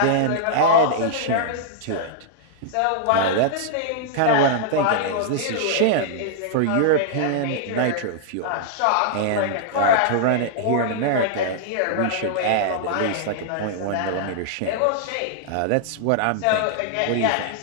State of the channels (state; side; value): different; both; correlation -0.01